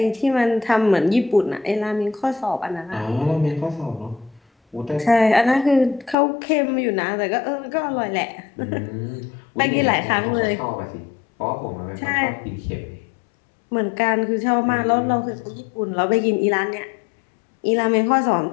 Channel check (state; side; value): drops out; right; at 6.2 s